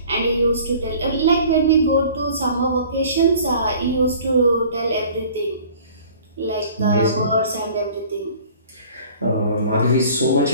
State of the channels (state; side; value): inverted; both; correlation -0.49